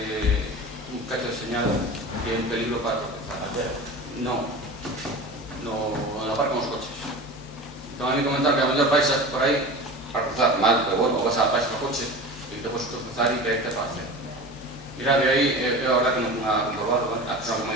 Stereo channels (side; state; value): both; normal; correlation 0.33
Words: cacho de señal que é un peligro para tropezar. Non, na par con os coches. Entón a mí comentaron que a mellor vais por aí para cruzar mal, pero bueno, vas a país no coche e te podes tropezar e que hai que te pase. Mira, de aí, eu a verdad que non fui a comprobarlo, vale? A persona que